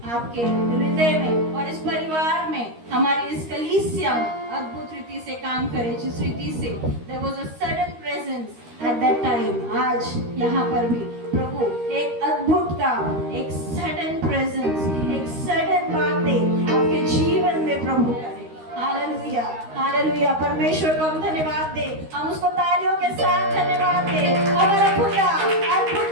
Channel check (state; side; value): late; left; 13 ms